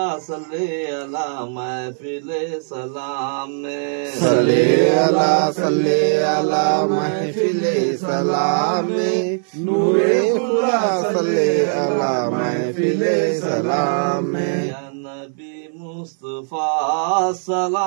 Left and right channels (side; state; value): left; silent; 58 dB below the other